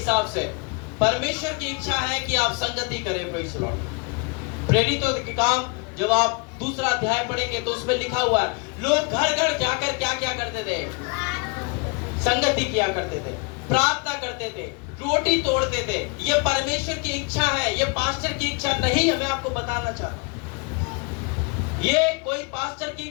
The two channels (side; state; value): right; quieter; 31.9 dB